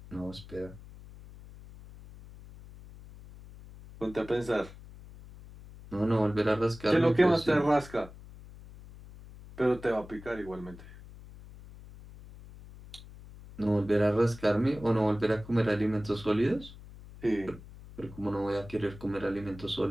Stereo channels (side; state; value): left; noise; hum, 18 dB below the sound